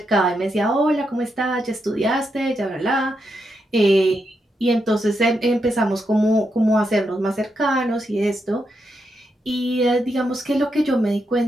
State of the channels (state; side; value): normal; both; correlation 0.83